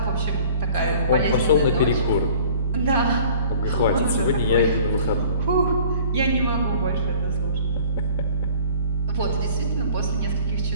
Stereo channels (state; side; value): inverted; both; correlation -0.48